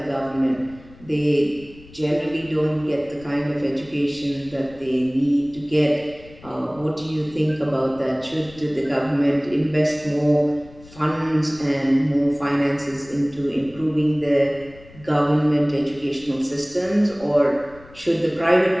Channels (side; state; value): left; noise; rumble, 22 dB below the sound